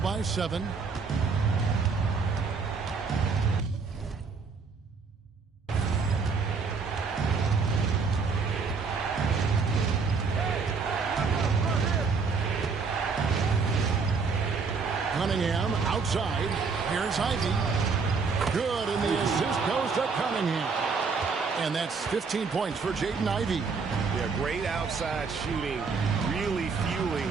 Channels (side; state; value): left; quieter; 5.0 dB